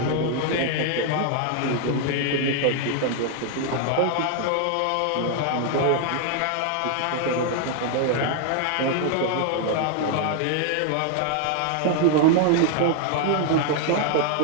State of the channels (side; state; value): both; different; correlation 0.00